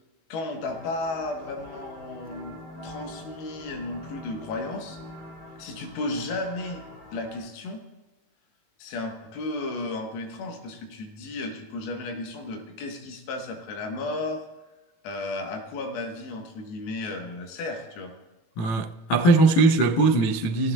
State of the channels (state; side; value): late; right; 18 ms